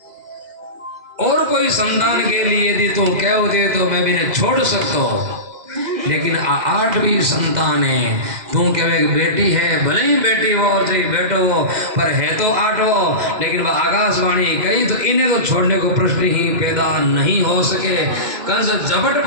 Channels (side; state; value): left; late; 2.0 ms